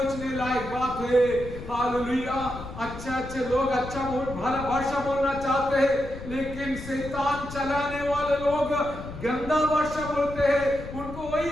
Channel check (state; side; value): noise; left; rumble, 11 dB below the sound